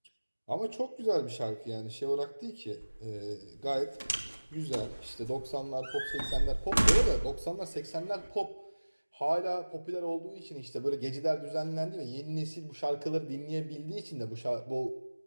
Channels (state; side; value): inverted; both; correlation -1.00